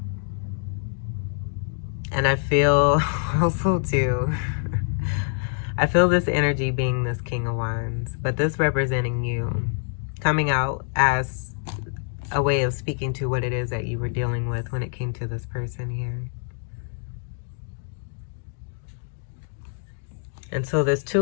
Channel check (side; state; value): right; silent; digital silence